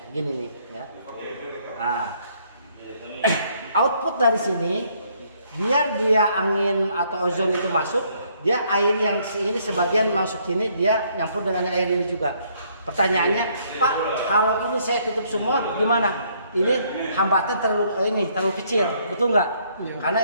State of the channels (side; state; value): both; inverted; correlation -0.67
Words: Gini nih ya. Nah, output dari sini biar dia angin atau ozon itu masuk, dia air yang ini sebagian masuk sini, dia nyampur dengan air ini juga. Pertanyaannya, Pak, kalau ini saya tutup semua gimana? Ini hambatan terlalu kecil, betul nggak? Iya. Karena